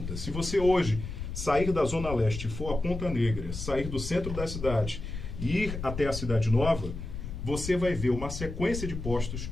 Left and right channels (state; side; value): noise; left; rumble, 7 dB below the sound